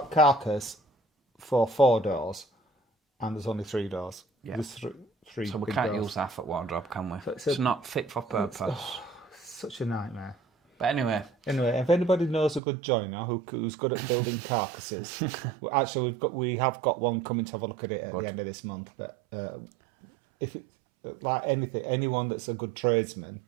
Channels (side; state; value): left; drops out; at 12.6 s